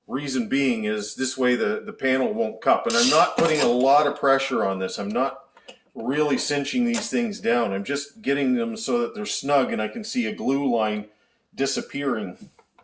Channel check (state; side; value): identical; both; correlation 1.00